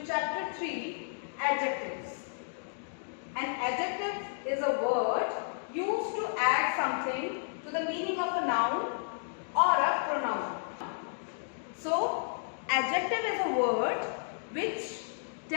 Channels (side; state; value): right; silent; digital silence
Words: chapter 3, Adjectives. An adjective is a word used to add something to the meaning of a noun or a pronoun. So, adjective is a word which